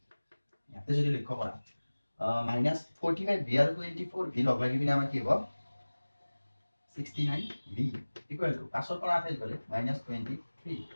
ইয়াতে যদি লক্ষ্য কৰা -45v আৰু 24v লগ লাগি বিনা আমাৰ কি হ'ব 69v equal to পাছৰ পৰা 28 গলে -23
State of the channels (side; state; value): both; inverted; correlation -1.00